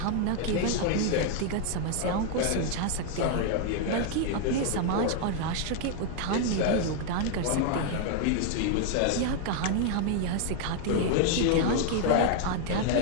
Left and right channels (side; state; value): both; different; correlation 0.00